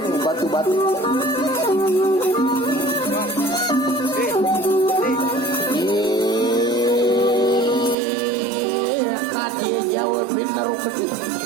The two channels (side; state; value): left; drops out; at 8.0 s